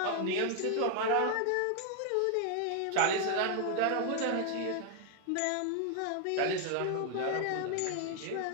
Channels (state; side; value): different; both; correlation 0.00